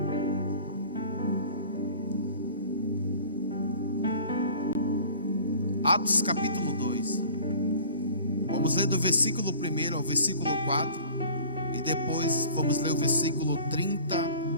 Atos capítulo 2. Vamos ler do versículo 1 ao versículo 4. E depois vamos ler o versículo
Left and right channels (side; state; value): both; inverted; correlation -0.45